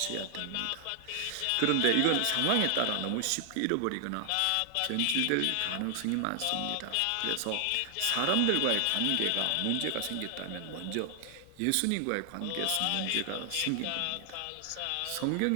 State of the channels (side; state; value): both; different; correlation 0.00